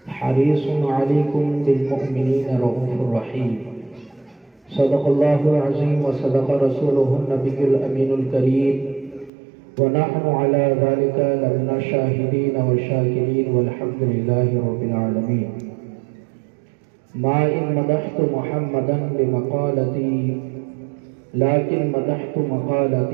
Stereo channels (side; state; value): left; drops out; at 9.3 s